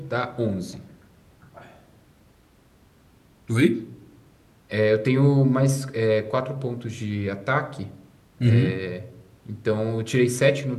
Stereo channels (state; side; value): identical; both; correlation 1.00